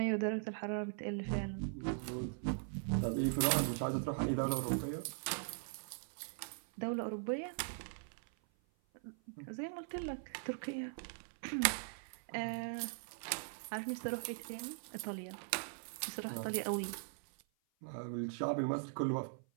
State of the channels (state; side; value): silent; left; 51 dB below the other